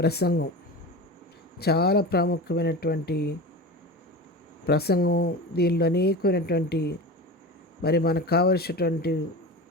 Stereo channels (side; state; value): both; normal; correlation 0.29